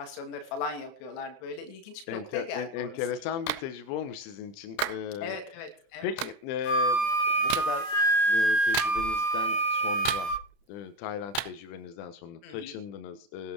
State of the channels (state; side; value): late; right; 30 ms